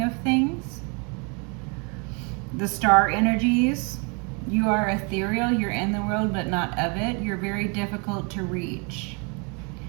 of things. The star energies, you are ethereal, you're in the world but not of it. You're very difficult to reach.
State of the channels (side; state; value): left; quieter; 33.8 dB